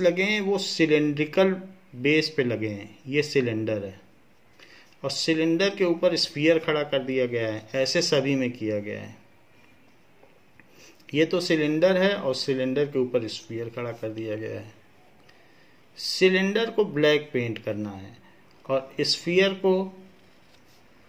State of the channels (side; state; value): both; identical; correlation 1.00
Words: लगे हैं वो सिलेंड्रिकल बेस पे लगे हैं. ये सिलेंडर है और सिलेंडर के ऊपर स्फीयर खड़ा कर दिया गया है. ऐसे सभी में किया गया है. ये तो सिलेंडर है और सिलेंडर के ऊपर स्फीयर खड़ा कर दिया गया है. सिलेंडर को ब्लैक पेंट करना है और स्फीयर को